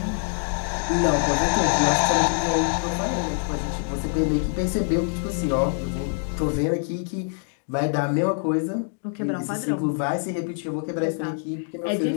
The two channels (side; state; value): right; silent; 62 dB below the other